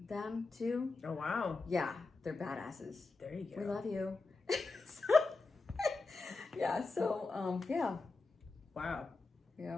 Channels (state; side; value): quieter; right; 3.7 dB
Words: them too. Oh wow. Yeah, they're badasses. There you go. We love you. Yeah. Wow.